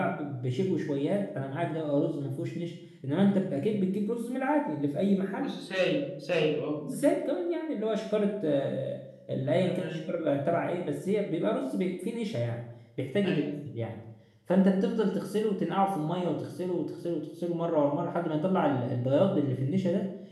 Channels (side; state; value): both; identical; correlation 1.00